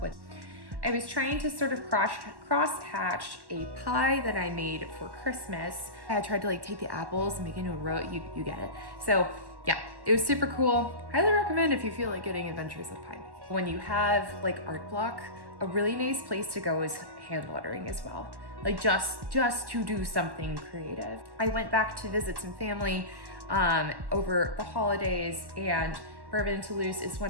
with. I was trying to sort of cross-hatch a pie that I made for Christmas. I tried to take the apples and make it into a row, you get it. So yeah, it was super cool. Highly recommend if you feel like getting adventures of pie making. When you have art block, a really nice place to go is hand lettering as well. Just to do something creative. I went back to visit some family over the holidays, and Bourbon and Toulouse is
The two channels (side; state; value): left; late; 1.1 ms